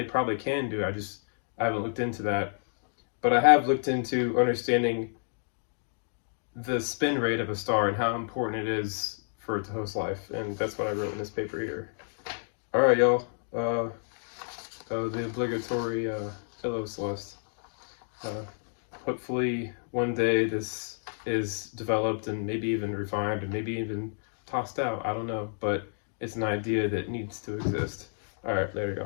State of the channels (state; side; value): silent; right; digital silence